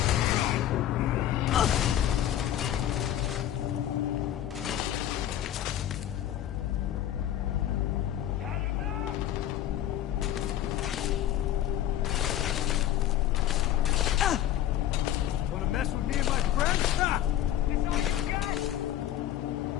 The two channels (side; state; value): right; quieter; 11.8 dB